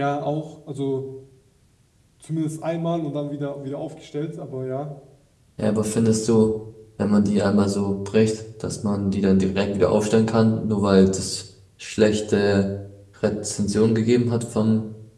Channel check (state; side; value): identical; both; correlation 1.00